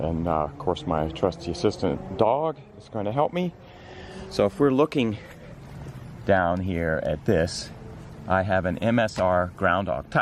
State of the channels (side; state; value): both; identical; correlation 1.00